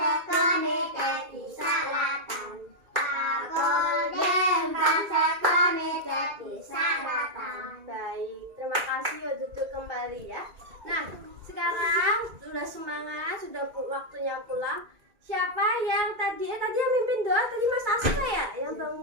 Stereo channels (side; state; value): left; late; 2.4 ms